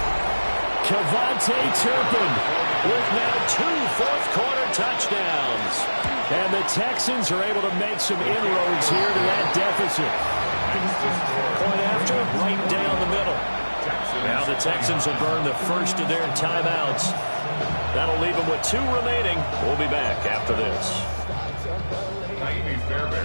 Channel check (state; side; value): inverted; both; correlation -1.00